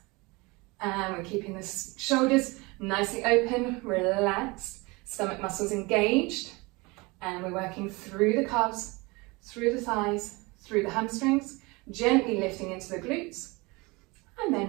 And we're keeping the shoulders nicely open, relaxed, stomach muscles engaged, and we're working through the calves, through the thighs, through the hamstrings, gently lifting into the glutes, and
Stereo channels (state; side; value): quieter; left; 25.1 dB